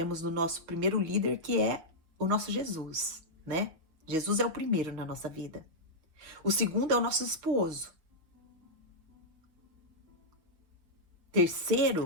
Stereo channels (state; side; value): late; left; 6.3 ms